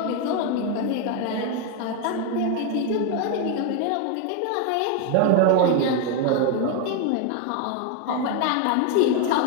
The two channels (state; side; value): different; both; correlation 0.01